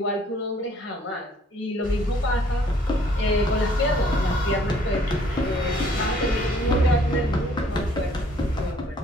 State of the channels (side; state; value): both; normal; correlation 0.61